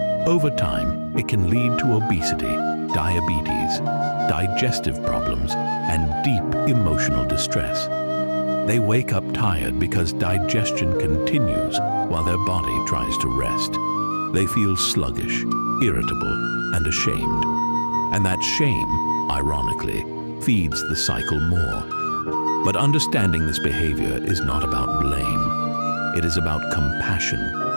Over time, it can lead to obesity, diabetes, digestive problems, and deep emotional distress. They wake up tired because digestion continues while their body tries to rest. They feel sluggish, irritable, and ashamed. And that shame, ironically, feeds the cycle more. But understanding this behavior is not about blame. It is about compassion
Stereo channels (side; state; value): both; inverted; correlation -1.00